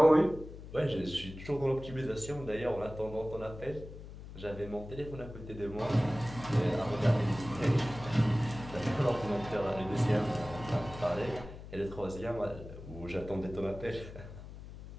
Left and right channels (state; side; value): noise; left; hum, 13 dB below the sound